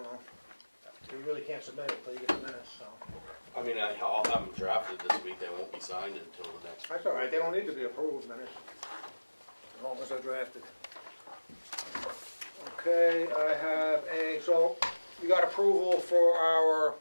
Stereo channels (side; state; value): both; inverted; correlation -1.00